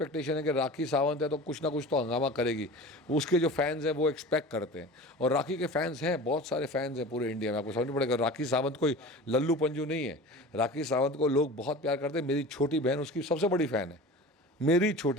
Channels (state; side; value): normal; both; correlation 0.36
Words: है कि राखी सावंत है तो कुछ ना कुछ तो हंगामा करेगी। उसके जो फैंस हैं वो एक्सपेक्ट करते हैं, और राखी के फैंस हैं, बहुत सारे फैंस हैं पूरे इंडिया में। आपको समझना पड़ेगा, राखी सावंत कोई लल्लू पंजू नहीं है। राखी सावंत को लोग बहुत प्यार करते हैं। मेरी छोटी बहन उसकी सबसे बड़ी फ़ैन है, मेरी